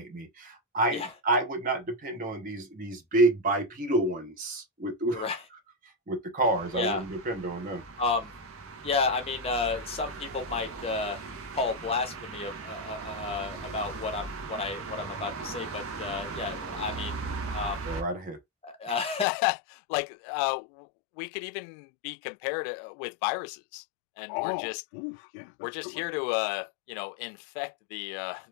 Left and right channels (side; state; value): right; drops out; at 19.2 s